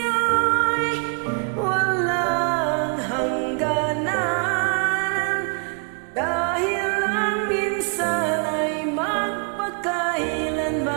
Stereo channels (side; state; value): left; quieter; 40.0 dB